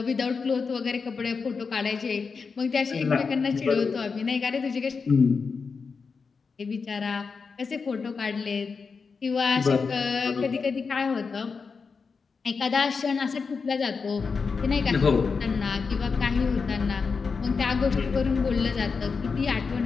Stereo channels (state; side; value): quieter; right; 5.1 dB